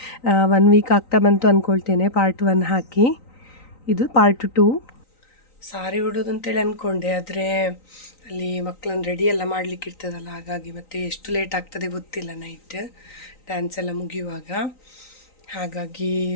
1 ವೀಕ್ ಆಗ್ತಾ ಬಂತು ಅಂದ್ಕೊಳ್ತೇನೆ ಪಾರ್ಟ್ 1 ಹಾಕಿ. ಇದು ಪಾರ್ಟ್ 2. ಸಾರಿ ಉಡೋದು ಅಂತೇಳಿ ಅಂದ್ಕೊಂಡೆ, ಆದರೆ ಅಲ್ಲಿ ಮಕ್ಕಳನ್ನ ರೆಡಿ ಎಲ್ಲ ಮಾಡಲಿಕ್ಕೆ ಇರ್ತದಲ್ಲ, ಹಾಗಾಗಿ ಮತ್ತೆ ಎಷ್ಟು ಲೇಟ್ ಆಗ್ತದೆ ಗೊತ್ತಿಲ್ಲ ನೈಟ್ ಡ್ಯಾನ್ಸ್ ಎಲ್ಲ ಮುಗಿಯುವಾಗ. ಹಾಗಾಗಿ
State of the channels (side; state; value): right; late; 3.9 ms